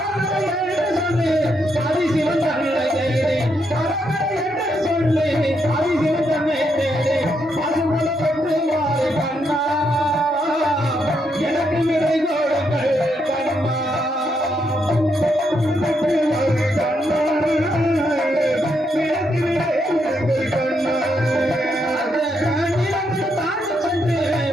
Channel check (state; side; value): normal; both; correlation 0.78